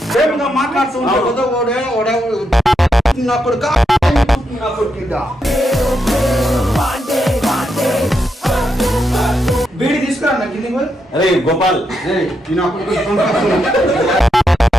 బీడి తీసుకురా నాకు కింది. అరే గోపాల్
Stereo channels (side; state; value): both; normal; correlation 0.82